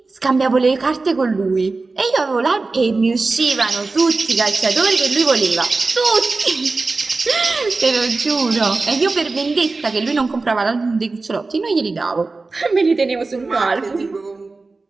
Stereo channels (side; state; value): left; quieter; 3.7 dB